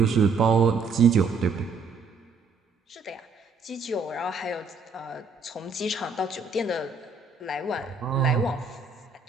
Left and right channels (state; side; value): quieter; left; 4.6 dB